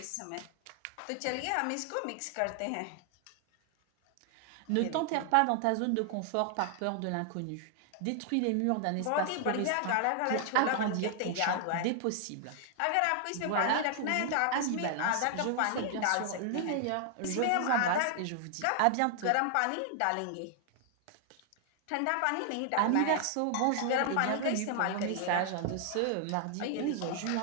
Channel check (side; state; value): both; different; correlation 0.00